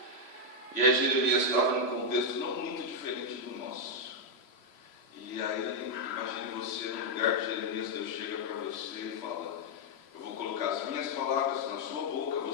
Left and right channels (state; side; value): late; right; 3.0 ms